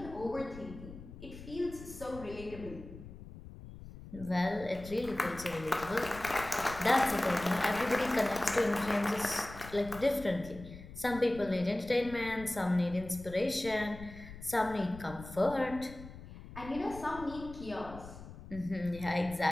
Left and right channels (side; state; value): left; noise; rumble, 14 dB below the sound